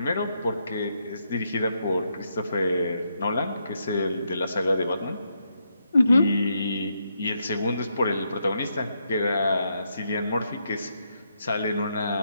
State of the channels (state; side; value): inverted; both; correlation -0.80